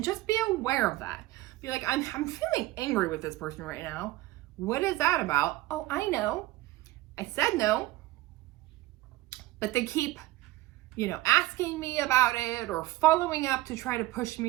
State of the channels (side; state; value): left; quieter; 17.9 dB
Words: just be aware of that. Be like, I'm feeling angry with this person right now. What is that about? Oh, I know. I said no, but they keep, asking me about it or following up to try to push